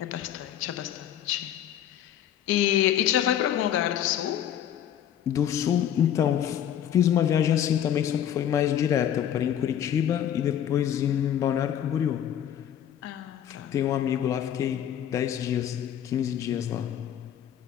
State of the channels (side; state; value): right; quieter; 10.2 dB